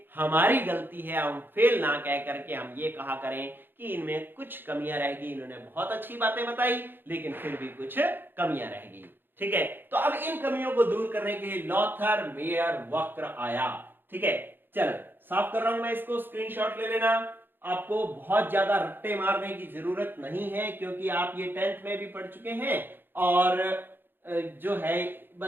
हमारी गलती है। हम फेल ना कह करके हम ये कहा करें कि इनमें कुछ कमियां रहेगी, इन्होंने बहुत अच्छी बातें बताई लेकिन फिर भी कुछ कमियां रहेगी। ठीक है, तो अब इन कमियों को दूर करने के लिए लॉथर मेयर वक्र आया। ठीक है, चलो साफ कर रहा हूं मैं इसको, स्क्रीनशॉट ले लेना। आपको बहुत ज्यादा रट्टे मारने की जरूरत नहीं है क्योंकि आप ये 10th में भी पढ़ चुके हैं और जो है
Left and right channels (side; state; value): left; late; 0.098 ms